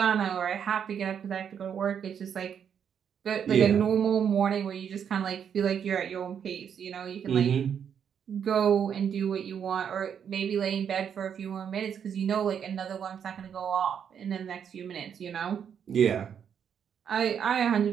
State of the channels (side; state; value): left; quieter; 8.0 dB